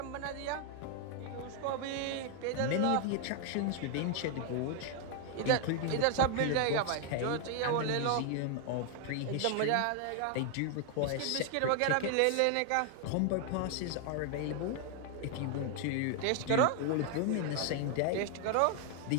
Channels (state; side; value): different; both; correlation 0.00